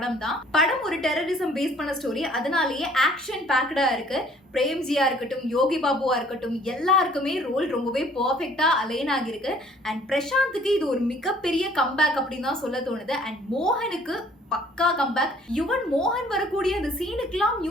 தான். படம் ஒரு டெரரிசம் பேஸ் பண்ண ஸ்டோரி, அதனாலேயே ஆக்ஷன் பேக்டா இருக்கு. பிரேம்ஜியா இருக்கட்டும், யோகி பாபுவா இருக்கட்டும், எல்லாருக்குமே ரோல் ரொம்பவே பர்ஃபெக்டா அலைன் ஆகிருக்கு. அண்ட் பிரசாந்துக்கு இது ஒரு மிகப்பெரிய கம்பேக் அப்படின்னு தான் சொல்ல தோணுது. அண்ட் மோகனுக்கு பக்கா கம்பேக். யுவன் மோகன் வரக்கூடிய அந்த சீனுக்கெல்லாம்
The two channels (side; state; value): both; normal; correlation 0.57